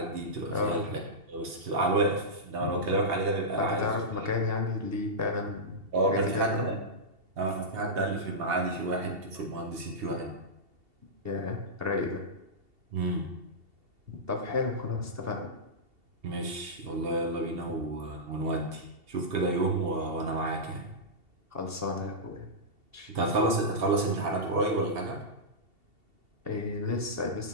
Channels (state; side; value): late; left; 2.7 ms